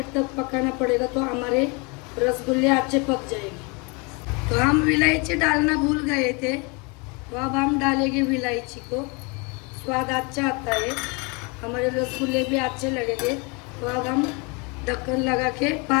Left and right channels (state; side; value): quieter; right; 30.4 dB